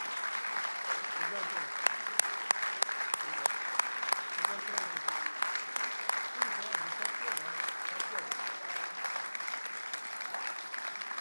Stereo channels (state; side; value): inverted; both; correlation -1.00